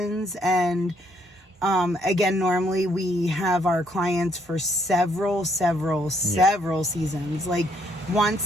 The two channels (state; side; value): normal; both; correlation 0.70